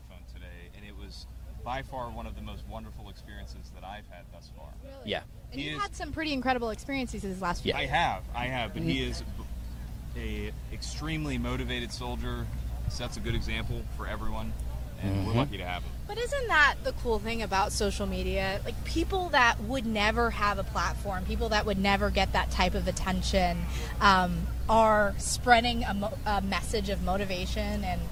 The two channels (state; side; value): identical; both; correlation 1.00